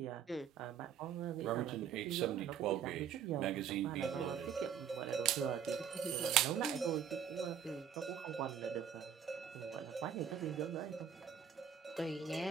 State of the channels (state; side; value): quieter; left; 8.2 dB